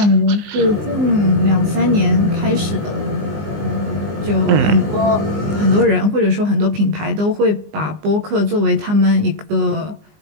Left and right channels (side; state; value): left; late; 19 ms